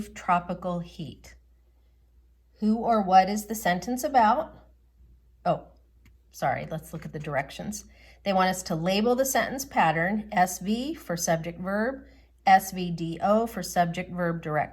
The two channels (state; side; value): identical; both; correlation 1.00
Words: tropical heat. Who or what is the sentence about? Oh, sorry, let's look at the directions. They want us to label the sentence pattern, SV for subject verb, SVDO for subject verb